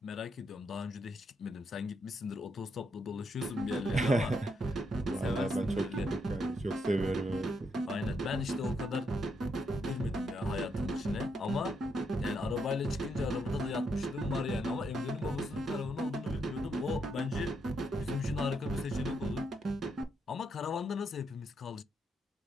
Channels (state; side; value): normal; both; correlation 0.78